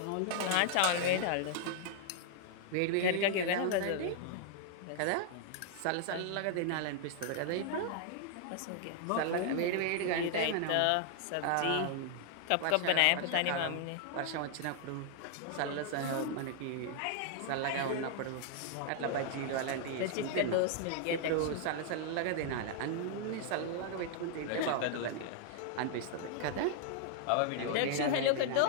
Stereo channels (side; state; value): both; different; correlation -0.01